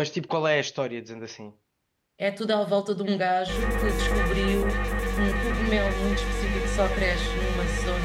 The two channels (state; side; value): identical; both; correlation 1.00